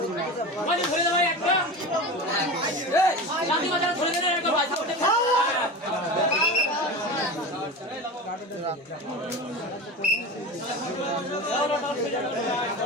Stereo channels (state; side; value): normal; both; correlation 0.28